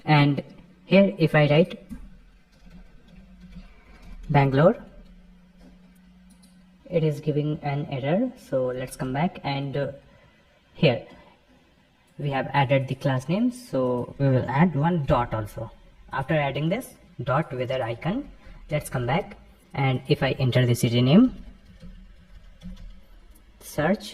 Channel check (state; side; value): identical; both; correlation 1.00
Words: and here if I write Bangalore, it is giving an error. So let's come back, and here we have added the class names, so we will add one dot also. After adding this dot weather icon, let's come back, and if I enter the city name,